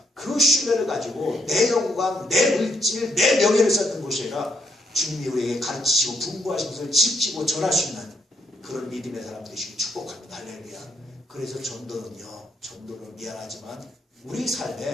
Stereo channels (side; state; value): both; normal; correlation 0.75